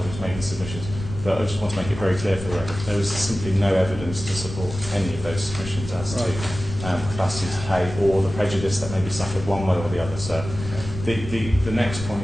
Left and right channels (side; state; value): left; noise; rumble, 10 dB below the sound